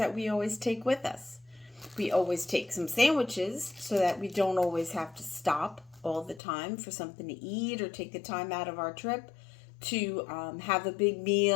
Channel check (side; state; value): right; drops out; at 6.4 s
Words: we always take with us. We always take some sandwiches so that we don't always have to stop all the time for something to eat or take the time out of our trip to have a big